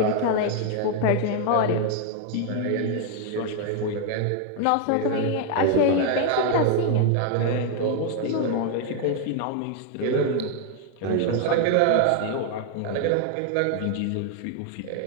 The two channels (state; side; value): different; both; correlation 0.00